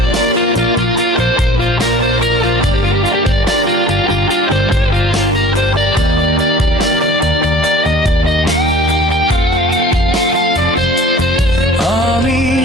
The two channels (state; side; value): normal; both; correlation 0.46